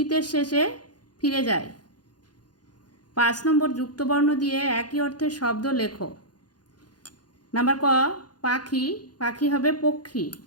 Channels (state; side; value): late; right; 0.69 ms